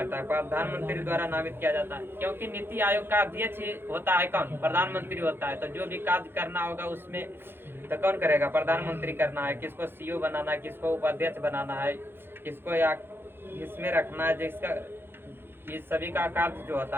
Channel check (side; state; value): left; late; 0.10 ms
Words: है? प्रधानमंत्री द्वारा नामित किया जाता है। क्योंकि नीति आयोग का अध्यक्ष होता है कौन? प्रधानमंत्री होता है। तो जो भी कार्य करना होगा उसमें तो कौन करेगा? प्रधानमंत्री करना है। किसको सीईओ बनाना है, किसको उपाध्यक्ष बनाना है, किसको या इसमें रखना है, जिसका ये सभी का कार्य जो